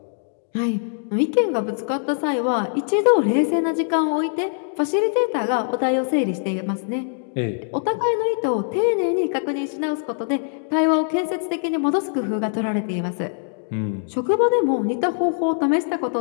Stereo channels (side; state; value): right; silent; digital silence